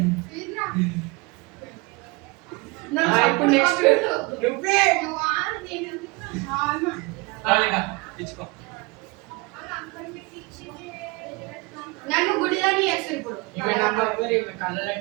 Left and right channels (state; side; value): quieter; left; 26.6 dB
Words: ఇప్పుడు నెక్స్ట్ నువ్వే. ఇచ్చుకో నన్ను గుడిదాన్ని చేస్తారు ఇప్పుడు ఈమె నంబర్ ఈమె కళ్ళలో